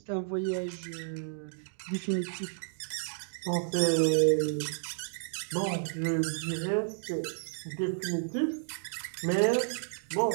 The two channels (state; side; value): silent; left; digital silence